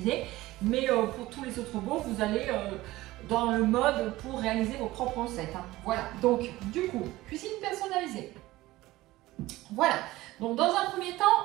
mais pour tous les autres robots, vous allez dans le mode pour réaliser vos propres recettes. Hein. Voilà, donc du coup, cuisine personnalisée. Voilà, donc dans un premier temps,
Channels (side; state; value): left; quieter; 17.8 dB